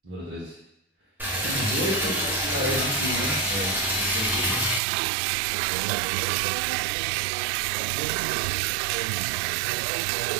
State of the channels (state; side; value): drops out; left; at 4.8 s